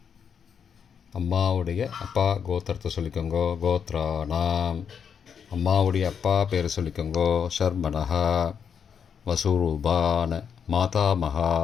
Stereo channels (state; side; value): quieter; right; 7.3 dB